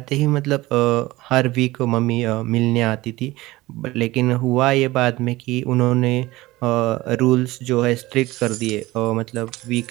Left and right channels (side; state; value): left; quieter; 19.1 dB